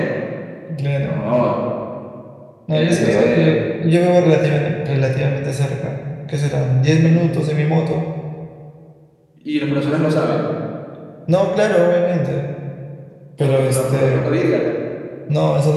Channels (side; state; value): both; identical; correlation 1.00